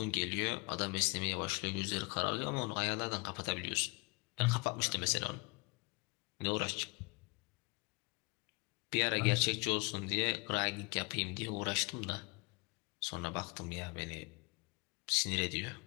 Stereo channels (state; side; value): quieter; right; 29.1 dB